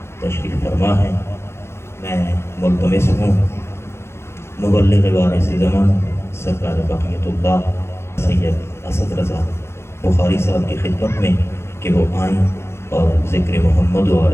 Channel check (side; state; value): right; late; 0.12 ms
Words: تشریف فرما ہے۔ میں ملتمس ہوں مبلغ وارث زمان سرکار بقیت اللہ سید اسد رضا بخاری صاحب کی خدمت میں کہ وہ آئیں اور ذکر محمد و